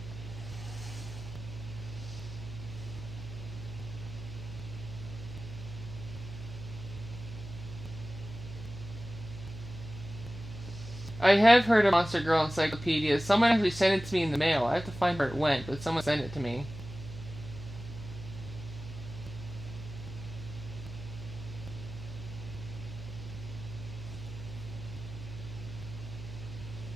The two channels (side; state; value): right; noise; hum, 11 dB below the sound